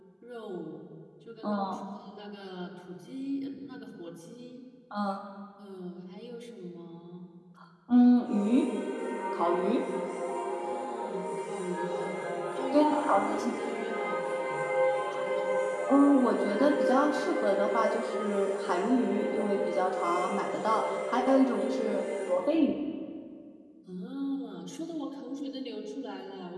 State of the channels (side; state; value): both; identical; correlation 1.00